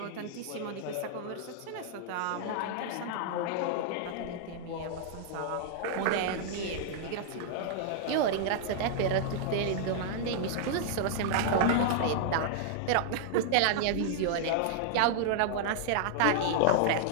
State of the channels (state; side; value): different; both; correlation -0.01